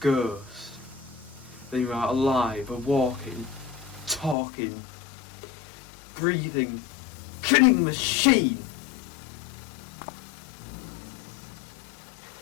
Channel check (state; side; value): drops out; right; at 4.4 s